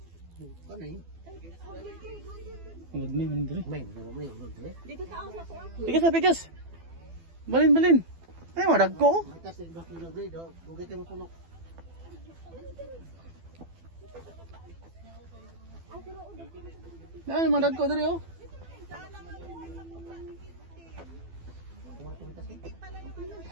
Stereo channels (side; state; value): left; late; 12 ms